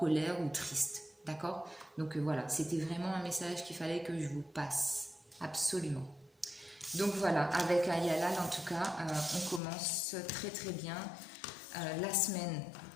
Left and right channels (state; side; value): drops out; right; at 9.6 s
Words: ou triste. D'accord? Donc voilà, c'était vraiment un message qu'il fallait que je vous passe. Absolument. Donc voilà, avec Ayala, en tout cas, on commence très très bien